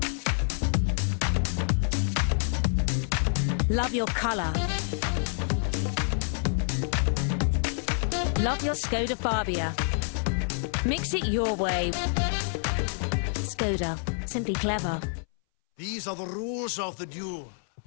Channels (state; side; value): silent; right; 60 dB below the other